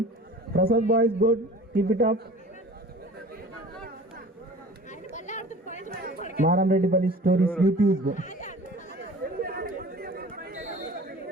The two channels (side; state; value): both; normal; correlation 0.43